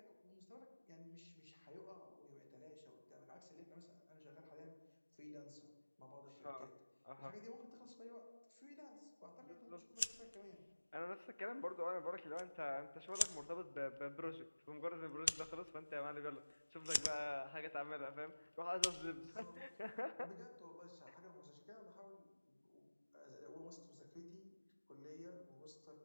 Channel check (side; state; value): both; inverted; correlation -1.00